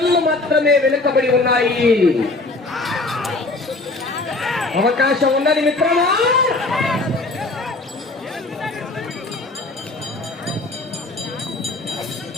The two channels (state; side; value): quieter; right; 3.1 dB